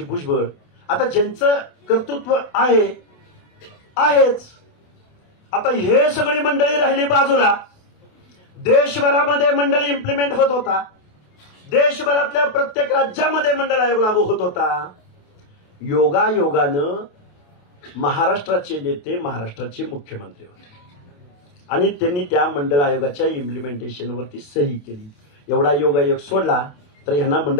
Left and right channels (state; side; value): late; right; 28 ms